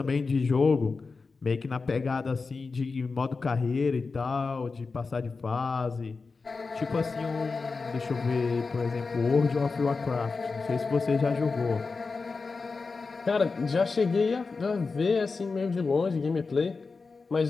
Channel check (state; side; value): quieter; right; 4.3 dB